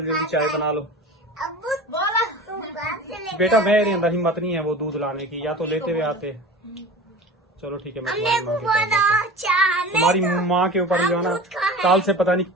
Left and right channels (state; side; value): normal; both; correlation 0.35